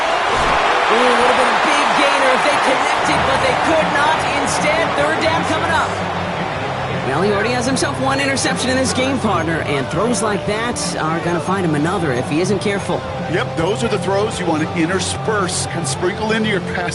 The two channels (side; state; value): both; identical; correlation 1.00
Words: Ooh, would have been a big gainer if they connected, but they could not. Instead, 3rd down coming up. Well, he already has himself 1 interception in this game, partner, and throws like that are going to find him another if he isn't careful. Yep, those are the throws you want to intersperse and sprinkle into your